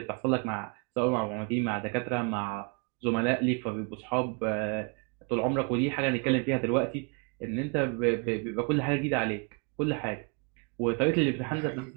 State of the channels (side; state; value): left; quieter; 34.4 dB